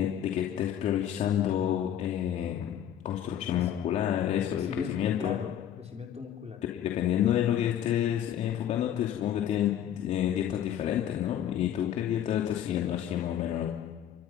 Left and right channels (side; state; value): right; quieter; 10.3 dB